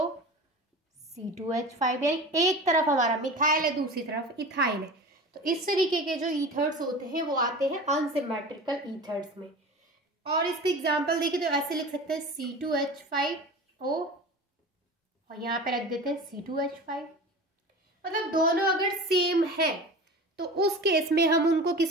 C2H5, यानी एक तरफ हमारा मिथाइल है, दूसरी तरफ इथाइल है। तो इस तरीके के जो ईथर्स होते हैं वो आते हैं अनसिमेट्रिकल ईथर्स में। और इसके एग्जाम्पल देखिए तो ऐसे लिख सकते हैं C2H5O और यहाँ पे रख देते हैं C2H5। मतलब दोनों अगर सेम है तो उस केस में हम उनको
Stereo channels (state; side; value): normal; both; correlation 0.34